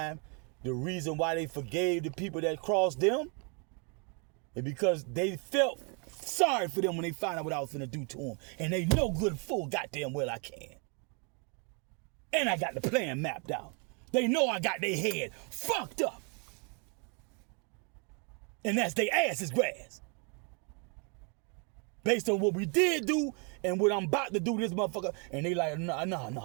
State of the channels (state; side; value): quieter; left; 36.2 dB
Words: the reason why they forgave the people that crossed them is because they felt sorry for them when they find out what I was finna do to them. And they know good full goddamn well I can. And I got the plan mapped out. They know I got their head fucked up. And that's their ass is grass. Based on what we did do and what I'm about to do this motherfucker. And they like, no.